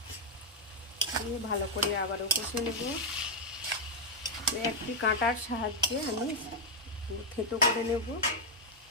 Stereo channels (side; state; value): both; normal; correlation -0.02